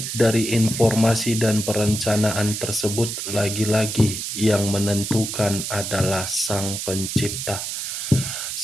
dari informasi dan perencanaan tersebut, lagi-lagi yang menentukan adalah Sang Pencipta.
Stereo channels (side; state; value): right; noise; hiss, 5 dB below the sound